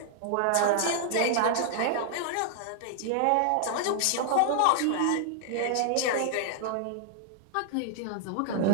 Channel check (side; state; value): both; different; correlation -0.01